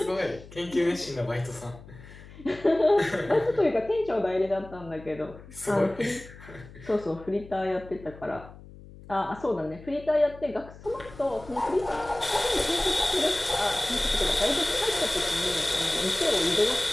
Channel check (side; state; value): left; noise; hum, 18 dB below the sound